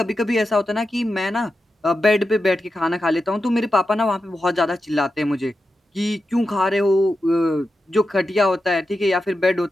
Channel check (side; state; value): both; normal; correlation 0.90